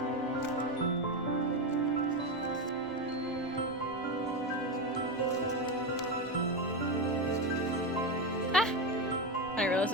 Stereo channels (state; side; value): normal; both; correlation 0.13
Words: I didn't realize